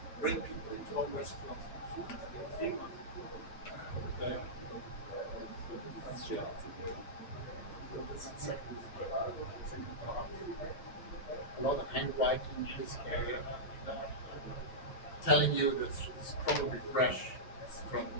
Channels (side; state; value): right; late; 9.2 ms